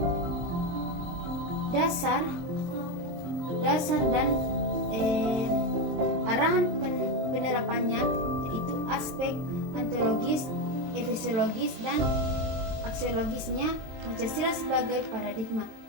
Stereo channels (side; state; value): left; late; 23 ms